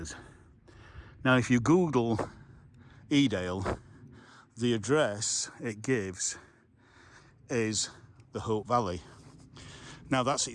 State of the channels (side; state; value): both; identical; correlation 1.00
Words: Now if you Google Edale, the address it gives is the Hope Valley. Now that's